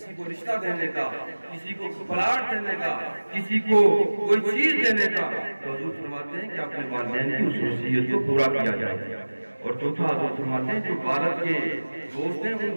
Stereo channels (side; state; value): both; inverted; correlation -1.00